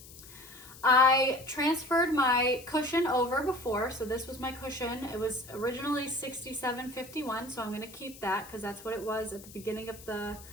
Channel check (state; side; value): noise; left; hiss, 18 dB below the sound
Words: I transferred my cushion over before. So this was my cushion. It was originally $67.51. So I'm going to keep that because that's what it was at the beginning of the